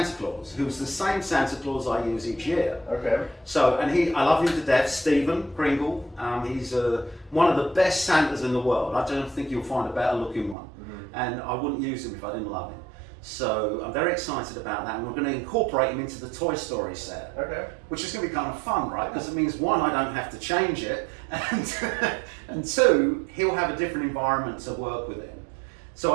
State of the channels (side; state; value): left; drops out; at 10.6 s